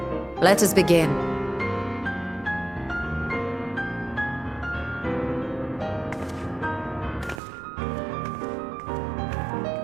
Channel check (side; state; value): left; drops out; at 7.4 s